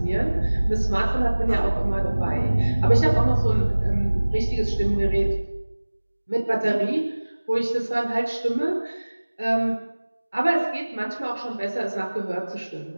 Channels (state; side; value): inverted; both; correlation -1.00